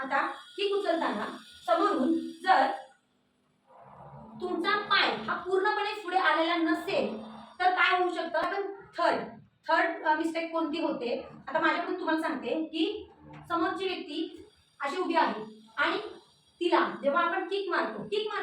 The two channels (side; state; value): both; identical; correlation 1.00